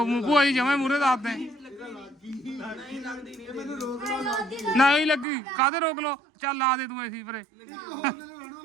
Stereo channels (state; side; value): drops out; left; at 5.2 s